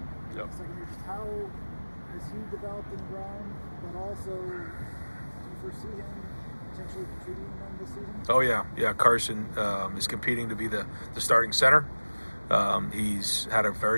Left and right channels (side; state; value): both; inverted; correlation -1.00